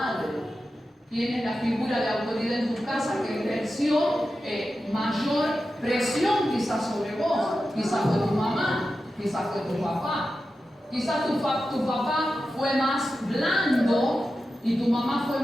Tienes la figura de autoridad en tu casa que ejerció mayor presión quizás sobre vos. Quizás fue tu mamá, quizás fue tu papá. Quizás tu papá fue más blando y tu mamá fue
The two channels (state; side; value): normal; both; correlation 0.92